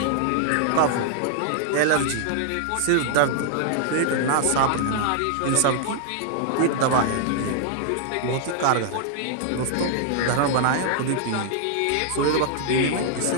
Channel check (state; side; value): different; both; correlation 0.00